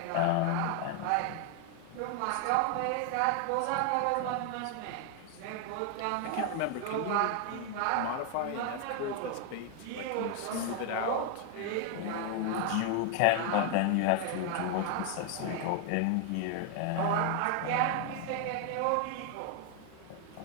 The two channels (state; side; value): different; both; correlation 0.00